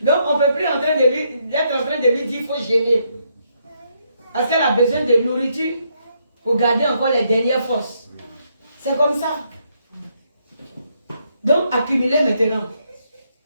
Donc, on ne peut plus être en train de lui dire, il faut jeûner. Parce qu'elle a besoin de nourriture pour garder encore les dernières forces. C'est comme ça. Donc, accumulez maintenant.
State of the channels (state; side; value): inverted; both; correlation -0.76